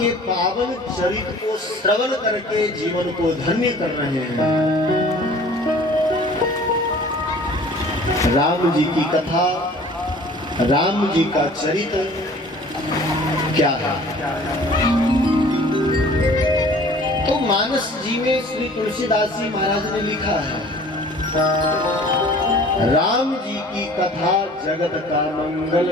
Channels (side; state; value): both; normal; correlation 0.48